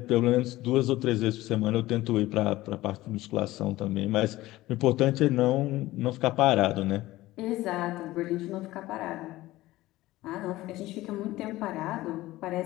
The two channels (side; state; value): right; quieter; 17.3 dB